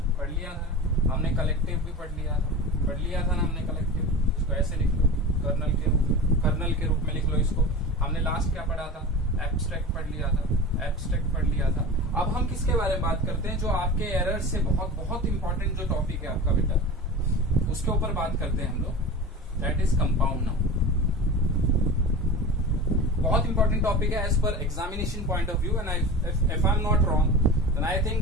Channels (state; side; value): normal; both; correlation 0.32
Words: हमने कलेक्टिव भी पढ़ लिया था ना हमने कलेक्टिव। इसको ऐसे लिख लो, कर्नल के रूप में लिख लो इसको। हमने लास्ट क्या पढ़ा था? एब्स्ट्रैक्ट पढ़ लिया था। अब हम किसके बारे में बात करते हैं? जो आपके एरर से बहुत इंपॉर्टेंट जो टॉपिक है आपका बेटा, उसके ऊपर बात करते हैं हम लोग। That is compound noun. बहुत इंपॉर्टेंट टॉपिक है as per examination point of view. And if I am not wrong, then I think